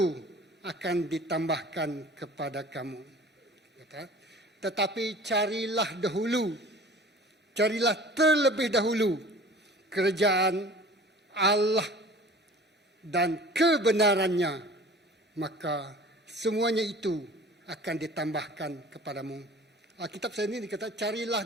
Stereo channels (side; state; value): both; normal; correlation 0.44